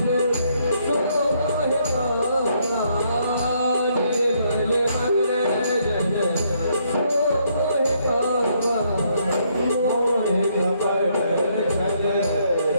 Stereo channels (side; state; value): both; inverted; correlation -0.72